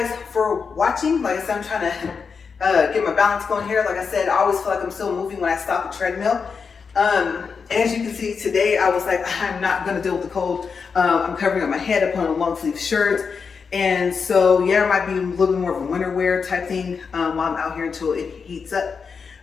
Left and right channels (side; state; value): right; quieter; 5.6 dB